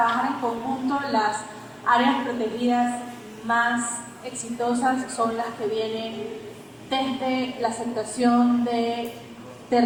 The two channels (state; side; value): identical; both; correlation 1.00